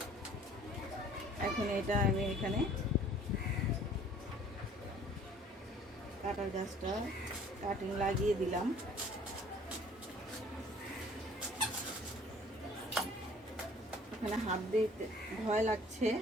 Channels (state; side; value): normal; both; correlation 0.53